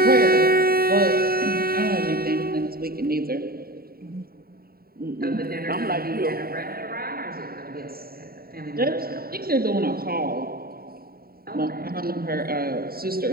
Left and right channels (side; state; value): left; late; 0.44 ms